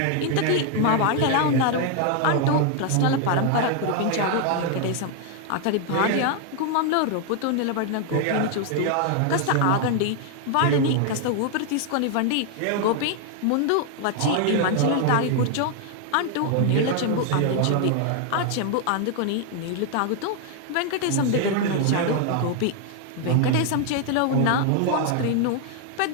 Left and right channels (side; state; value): both; different; correlation 0.00